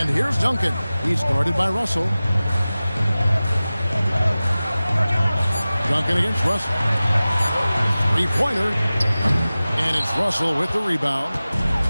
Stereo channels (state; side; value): inverted; both; correlation -0.97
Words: here's Duncan. He's guarded by Russell. Duncan against Russell. Three-pointer. And it's Russell with the rebound.